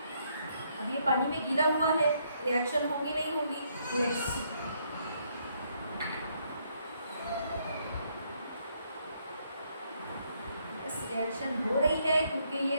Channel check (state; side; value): inverted; both; correlation -0.72